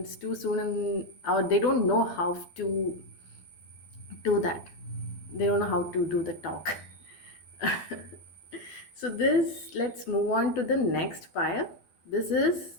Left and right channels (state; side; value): late; right; 12 ms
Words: too soon, or they don't know how to do that. They don't know how to do the talk. So this, let's move on to the next pile. This is